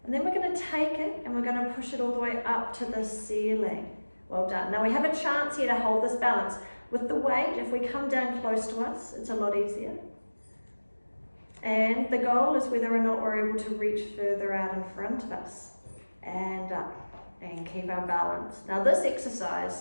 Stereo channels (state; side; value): inverted; both; correlation -1.00